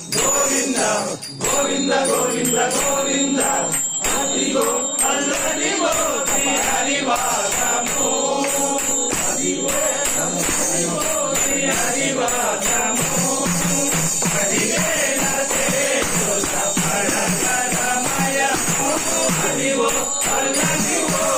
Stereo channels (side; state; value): both; identical; correlation 1.00